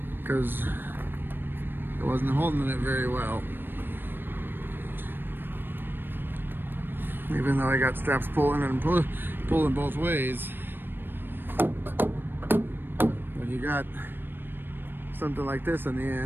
because it wasn't holding it very well. Even though I got straps pulling and pulling both ways, when you got something like this in the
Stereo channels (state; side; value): late; left; 0.096 ms